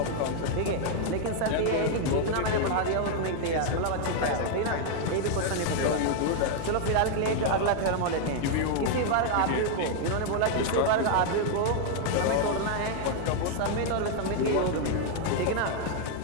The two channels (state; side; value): different; both; correlation 0.00